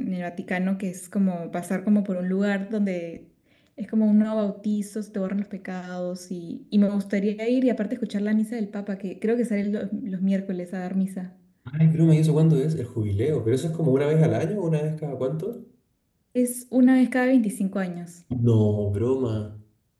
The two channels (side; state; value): both; identical; correlation 1.00